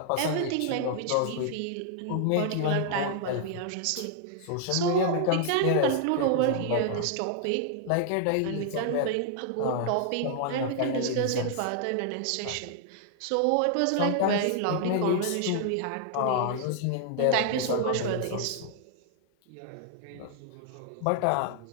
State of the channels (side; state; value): both; different; correlation -0.01